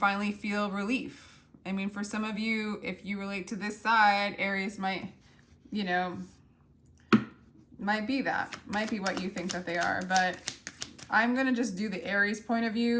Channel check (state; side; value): identical; both; correlation 1.00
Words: feel relief. I mean, for some of you, if you relate to this side, Aries might, you know, might be what you think that they are. But I'm going to just do the Aries point of